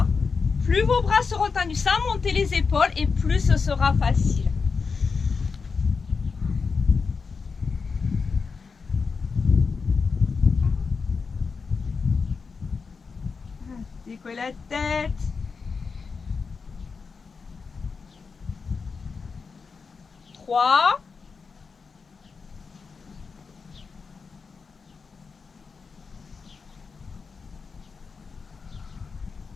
Plus vos bras seront tendus sans monter les épaules et plus ce sera facile. Décollez la tête. 3.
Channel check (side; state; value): right; quieter; 5.1 dB